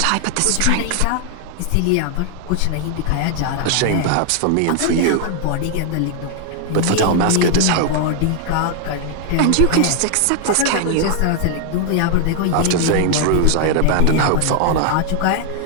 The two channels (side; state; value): both; different; correlation 0.00